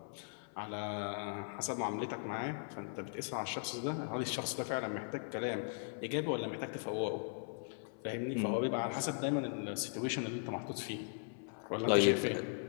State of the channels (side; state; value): right; silent; 52 dB below the other